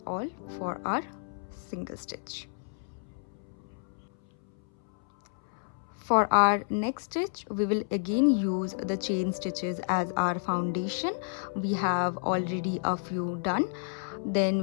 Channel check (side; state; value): right; silent; 57 dB below the other